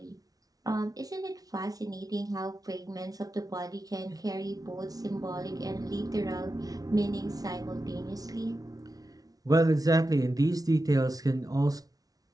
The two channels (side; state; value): left; late; 0.18 ms